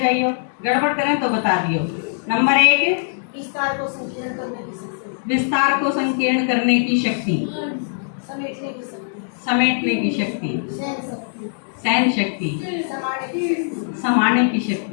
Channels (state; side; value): silent; right; digital silence